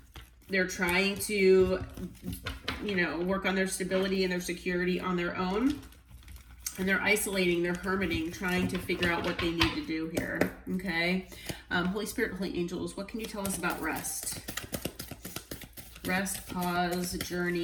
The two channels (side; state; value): both; identical; correlation 1.00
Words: They're trying to, work on their stability and their security on their own. And they're isolating, they're hermiting, trying to figure out what they need to do here. Okay, Holy Spirit, Holy Angels, what can you tell us about rest? Rest, pause,